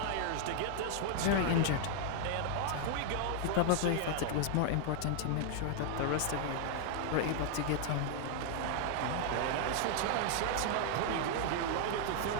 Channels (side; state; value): both; different; correlation 0.00